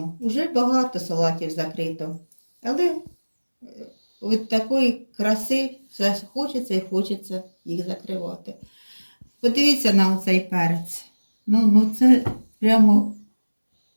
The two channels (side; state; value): both; inverted; correlation -1.00